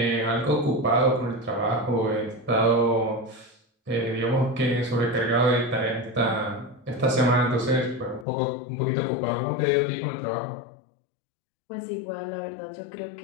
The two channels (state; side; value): drops out; right; at 8.2 s